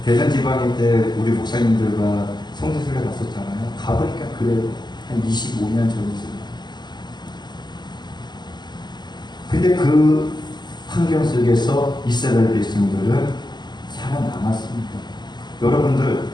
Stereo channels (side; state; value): right; late; 0.21 ms